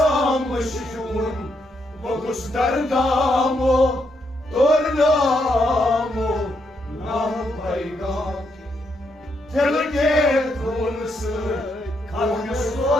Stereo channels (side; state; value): both; normal; correlation 0.78